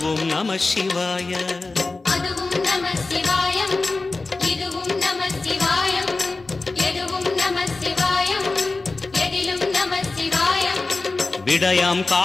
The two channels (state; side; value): quieter; right; 3.5 dB